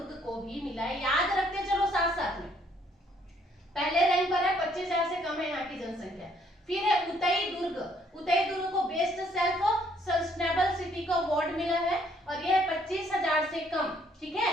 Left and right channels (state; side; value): normal; both; correlation 0.66